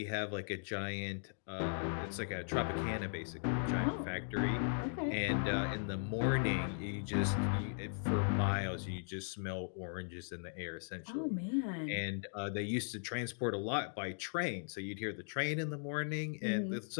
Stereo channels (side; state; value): right; silent; digital silence